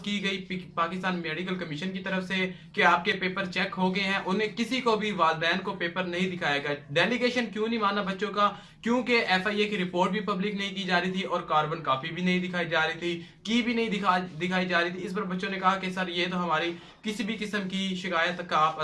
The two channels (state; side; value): identical; both; correlation 1.00